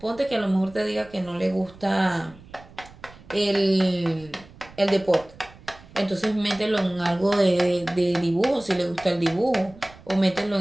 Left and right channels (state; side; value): noise; right; rumble, 22 dB below the sound